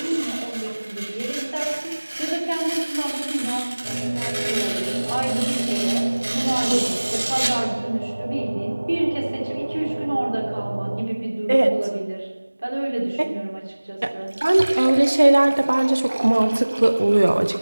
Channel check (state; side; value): inverted; both; correlation -1.00